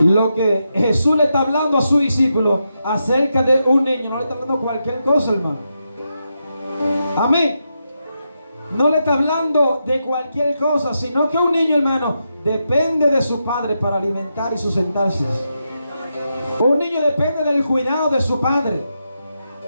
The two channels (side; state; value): both; inverted; correlation -0.85